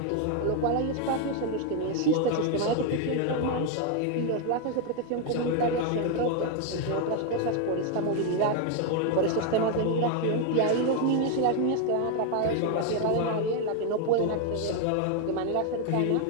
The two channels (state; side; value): different; both; correlation 0.01